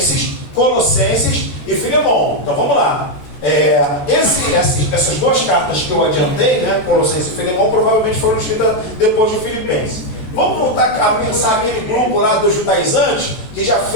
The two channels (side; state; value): right; late; 14 ms